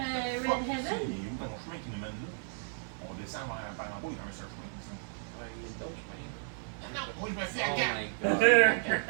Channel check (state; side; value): silent; left; 55 dB below the other